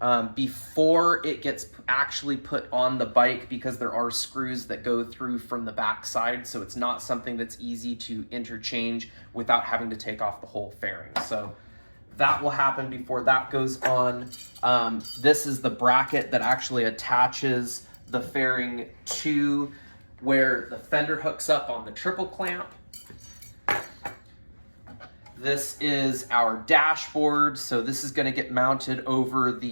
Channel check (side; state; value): both; inverted; correlation -1.00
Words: before it gets actually put on the bike, because there are screws that go through from the back side, so it's not something that's easy to interchange without having to take off the whole fairing. So that will happen before that goes on. This is the bracket that actually attaches the fairing to where the fender hooks up on the triple clamp. This is our dashboard, so this is going to get mounted over